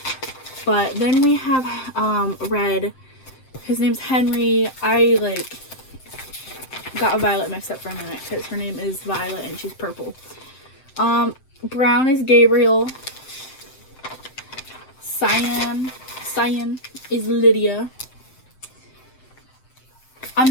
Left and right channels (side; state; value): right; late; 7.7 ms